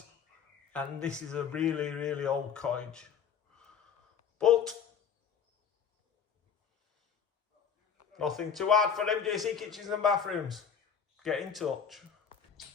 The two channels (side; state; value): right; quieter; 7.3 dB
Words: and this is a really, really old cottage. But nothing too hard for MJC kitchens and bathrooms. Get in touch.